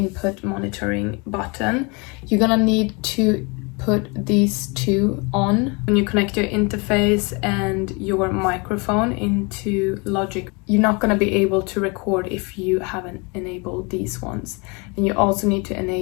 monitoring button. You're gonna need to put these two on. When you connect your interface and your microphone into Logic, you're not going to be able to record if you haven't enabled these ones. And you also need to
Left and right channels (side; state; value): right; quieter; 29.9 dB